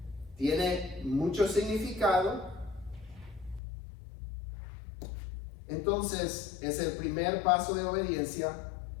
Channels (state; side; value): drops out; right; at 3.6 s